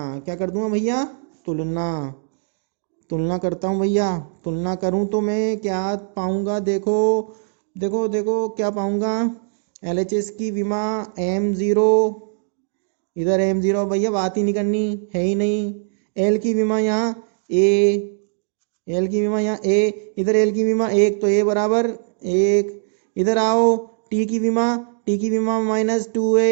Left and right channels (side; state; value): left; silent; digital silence